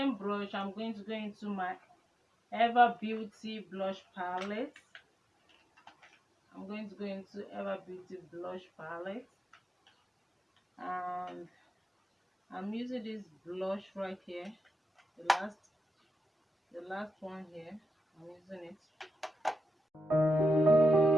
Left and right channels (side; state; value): both; normal; correlation 0.88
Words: brush, I'm going to go into my Ever Beauty blush palette. I'm going to go into Ever Beauty blush palette, and I'm using this blush right here, the last one here. I'm using it.